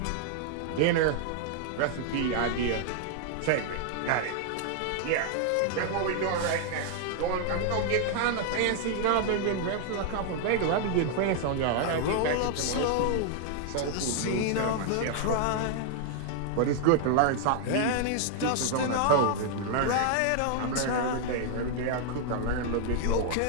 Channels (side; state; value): both; different; correlation 0.00